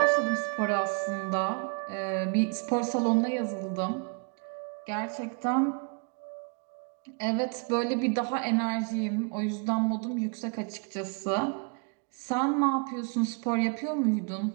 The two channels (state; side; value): quieter; left; 36.4 dB